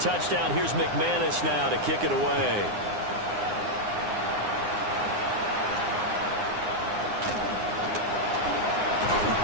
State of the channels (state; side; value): late; left; 9.7 ms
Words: here's McManus now to kick it away.